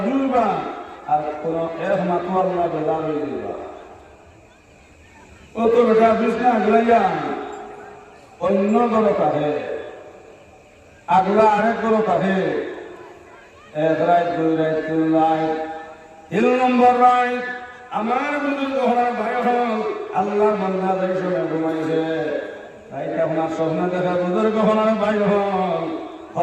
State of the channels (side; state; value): both; identical; correlation 1.00